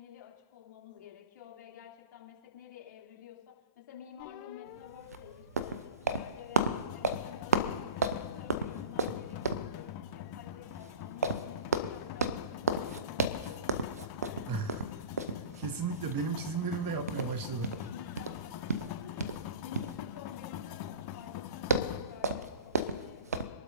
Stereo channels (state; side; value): inverted; both; correlation -0.33